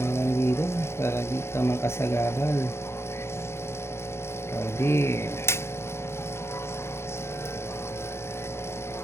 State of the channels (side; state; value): right; late; 0.12 ms